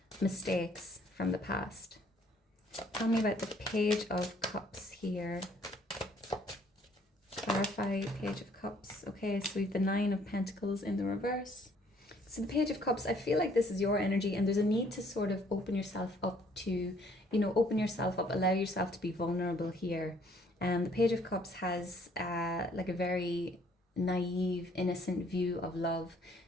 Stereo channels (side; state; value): both; normal; correlation 0.62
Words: mistakes from the past. Tell me about the Page of Cups here. Clarify Page of Cups. Okay, so we have the Nine of Pentacles in the reverse. So the Page of Cups, I feel like this is your energy, and there's a need to sort of open yourself up to, open yourself up, allow yourself to be vulnerable here. The Page of Cups has like a very naive, innocent view of love.